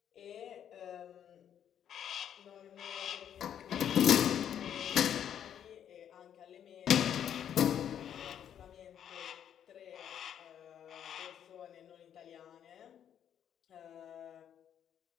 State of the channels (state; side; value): quieter; right; 9.4 dB